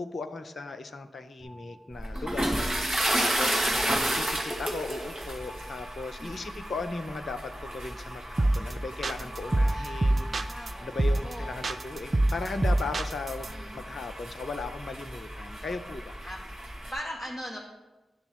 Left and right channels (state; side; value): normal; both; correlation 0.92